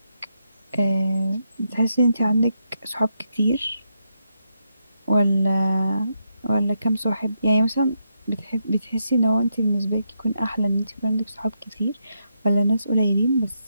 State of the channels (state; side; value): inverted; both; correlation -0.82